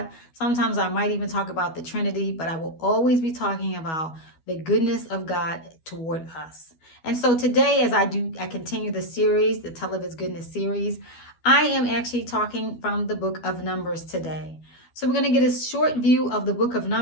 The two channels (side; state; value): right; late; 12 ms